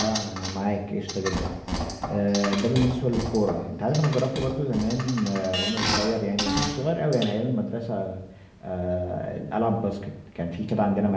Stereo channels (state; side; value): identical; both; correlation 1.00